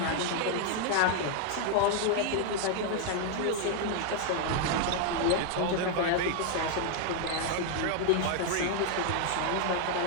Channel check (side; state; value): both; different; correlation 0.00